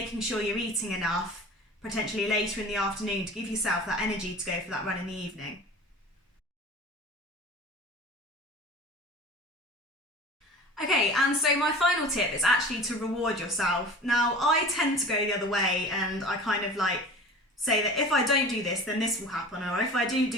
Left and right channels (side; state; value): both; normal; correlation 0.39